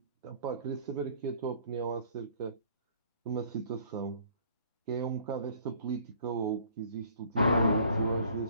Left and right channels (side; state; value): both; inverted; correlation -0.56